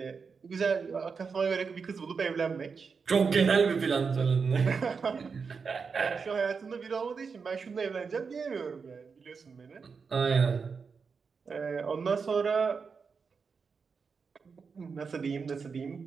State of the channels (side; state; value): left; quieter; 5.4 dB